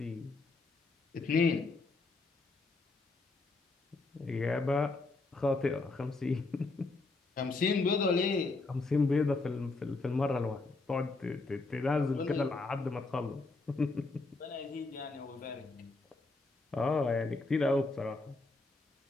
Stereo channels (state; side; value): quieter; right; 3.5 dB